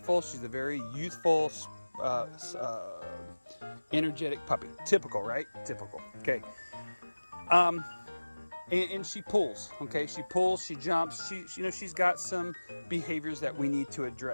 She's a very youthful, energetic puppy. Typical, right? Typical. Okay. And she pulls, okay? She pulls, she jumps, she's got some behaviors that we need to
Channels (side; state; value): both; inverted; correlation -1.00